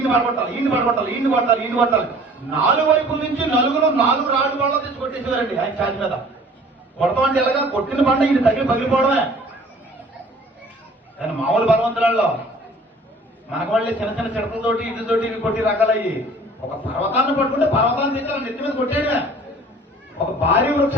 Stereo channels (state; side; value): normal; both; correlation 0.50